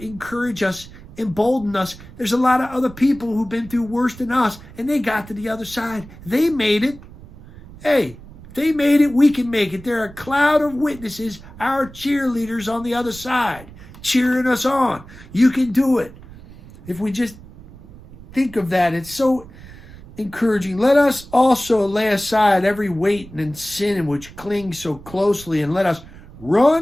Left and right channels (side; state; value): right; noise; rumble, 18 dB below the sound